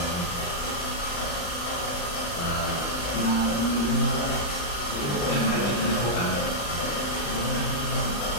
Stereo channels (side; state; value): right; late; 34 ms